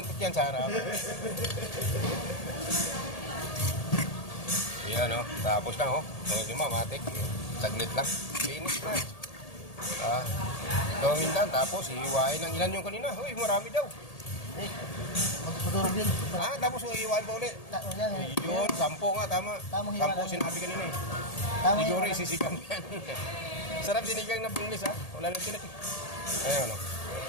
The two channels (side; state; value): right; late; 1.8 ms